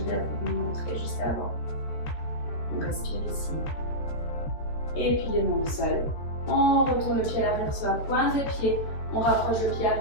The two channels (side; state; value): right; late; 13 ms